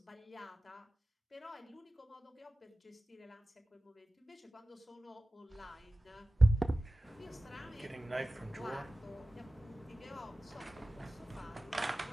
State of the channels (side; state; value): both; normal; correlation 0.96